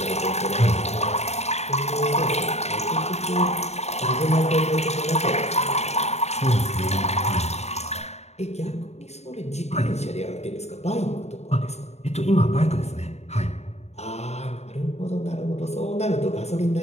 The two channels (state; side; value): late; right; 0.32 ms